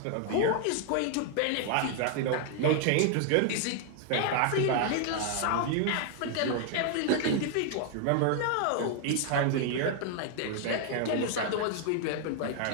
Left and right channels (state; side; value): different; both; correlation 0.00